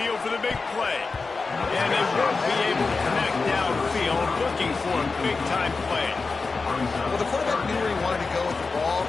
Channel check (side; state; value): right; quieter; 4.2 dB